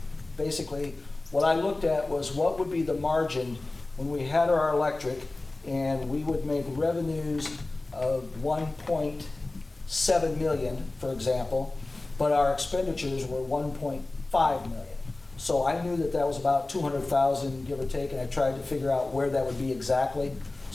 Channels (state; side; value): quieter; right; 3.0 dB